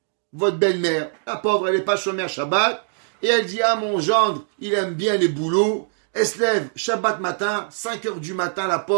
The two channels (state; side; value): silent; left; digital silence